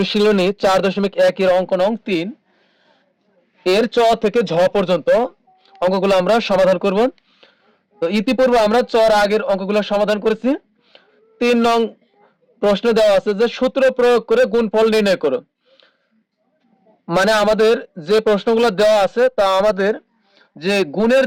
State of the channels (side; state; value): both; identical; correlation 1.00